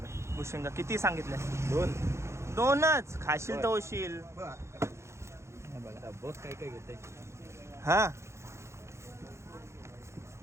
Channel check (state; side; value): late; left; 0.13 ms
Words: भुशिंगा किती सांगितले? 2च खाशील तर होशील. बस काय काय घेते. हा,